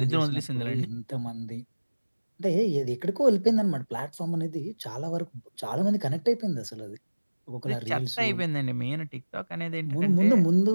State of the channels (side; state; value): both; inverted; correlation -1.00